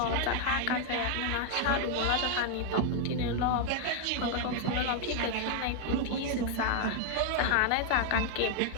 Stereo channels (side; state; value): both; different; correlation 0.00